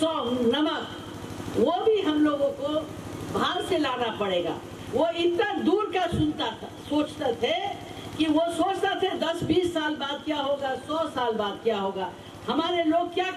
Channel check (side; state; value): both; identical; correlation 1.00